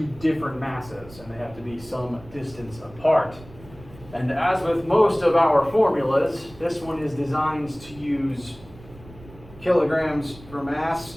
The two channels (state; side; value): noise; right; rumble, 20 dB below the sound